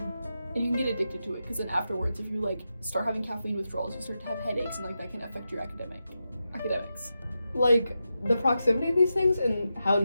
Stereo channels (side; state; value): both; inverted; correlation -0.89